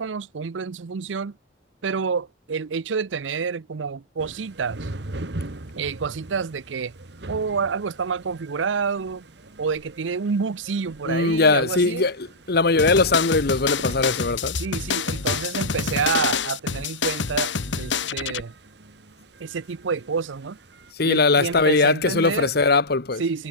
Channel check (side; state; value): both; normal; correlation -0.11